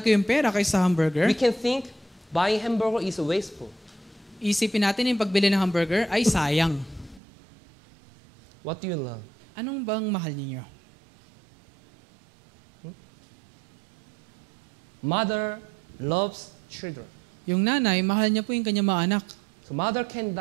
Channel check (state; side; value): drops out; left; at 7.2 s